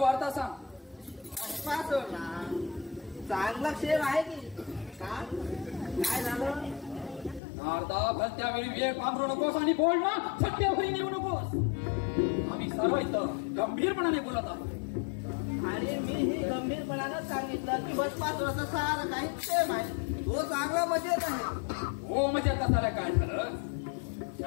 सांग. भस्मासुर ना चांगला क्षेम आहे की काय झालं? नारदा, भलत्या वेळी वेळ पांघरू नकोस आणि बोल ना सत्यावरी नेऊ नकोस. आम्ही सर्व इथं गंभीरपणाने बोलत आहोत. आणि मी ही गंभीरपणानं सांगितलं की भस्मासुराचं सारं काही क्षेम आहे. तो चांगला मजेत आहे. हो म्हणजे कसाला काय झालं?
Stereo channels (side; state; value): right; drops out; at 7.4 s